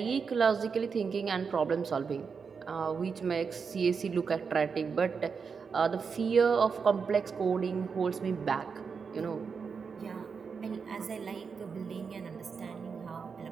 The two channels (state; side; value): quieter; left; 5.7 dB